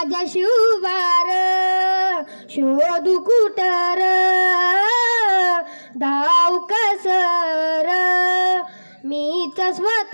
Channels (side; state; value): both; inverted; correlation -1.00